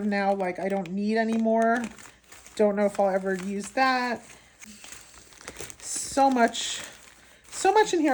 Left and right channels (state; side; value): identical; both; correlation 1.00